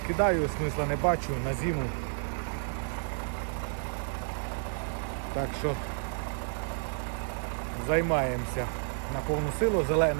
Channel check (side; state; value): left; silent; digital silence